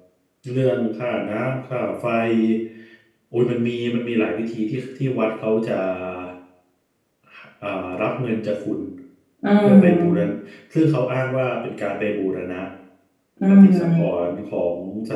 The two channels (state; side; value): identical; both; correlation 1.00